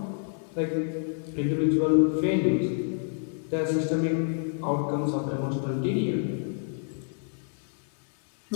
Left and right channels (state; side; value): silent; right; digital silence